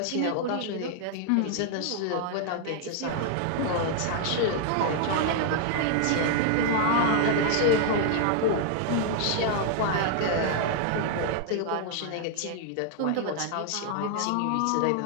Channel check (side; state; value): both; different; correlation 0.00